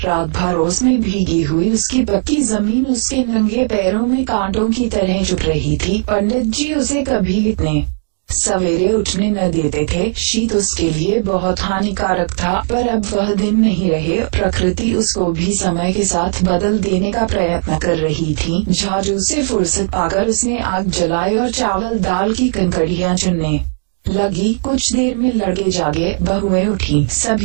रात भर ओस में भीगी हुई उसकी पक्की जमीन उसके नंगे पैरों में कांटों की तरह चुभ रही थी। पंडित जी उसे कभी इतने सवेरे उठने न देते थे। शीत उसके लिए बहुत हानिकारक था, पर अब वह दिन नहीं रहे। प्रकृति उसको भी समय के साथ बदल देने का प्रयत्न कर रही थी। झाड़ू से फुर्सत पाकर उसने आग जलाई और चावल दाल की कंकड़ियां चुनने लगी। कुछ देर में लड़के जागे, बहुएं उठी।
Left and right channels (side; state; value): left; silent; digital silence